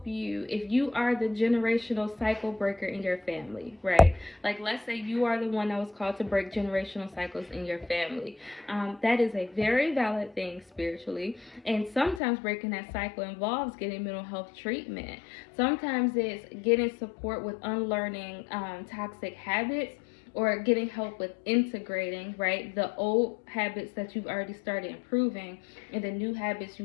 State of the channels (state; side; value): drops out; right; at 12.2 s